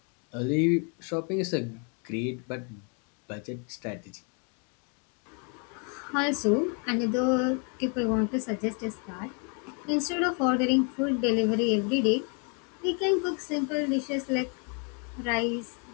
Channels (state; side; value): quieter; right; 38.0 dB